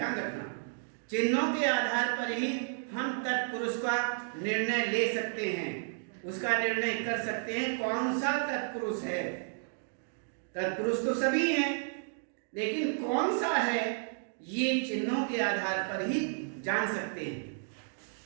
रखना, चिन्हों के आधार पर ही हम तत्पुरुष का निर्णय ले सकते हैं, उसका निर्णय कर सकते हैं कौन सा तत्पुरुष है। तत्पुरुष तो सभी हैं, लेकिन कौन सा है ये चिन्हों के आधार पर ही जान सकते हैं।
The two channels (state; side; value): silent; left; digital silence